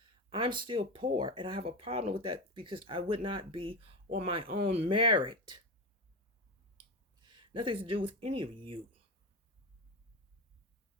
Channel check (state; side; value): normal; both; correlation 0.18